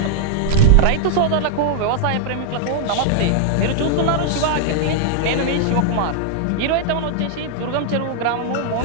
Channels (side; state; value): both; different; correlation -0.01